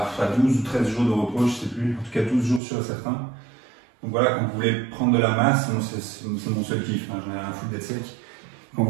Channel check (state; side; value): drops out; left; at 2.6 s